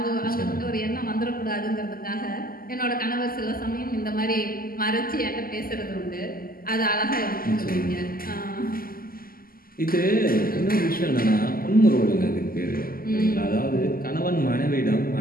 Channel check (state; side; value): late; right; 0.42 ms